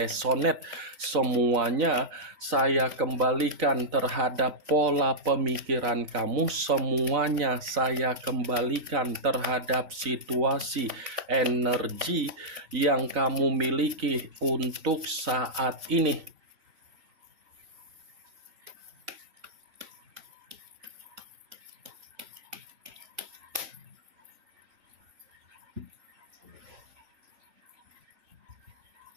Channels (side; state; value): left; late; 3.9 ms